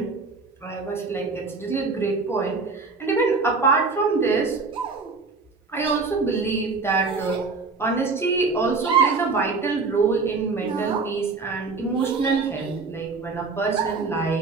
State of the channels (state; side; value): quieter; left; 4.3 dB